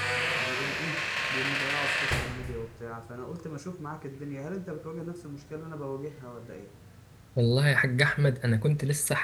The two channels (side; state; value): both; identical; correlation 1.00